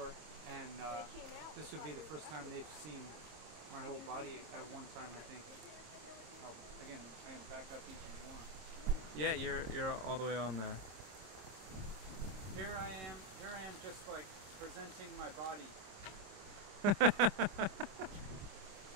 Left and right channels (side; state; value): left; late; 26 ms